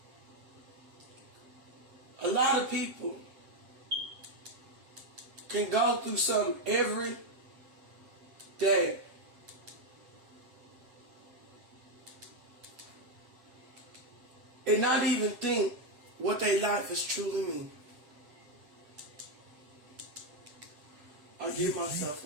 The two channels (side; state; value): left; late; 7.7 ms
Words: A lot of people can go through something every day. And not even think what their life is truly mean. give myself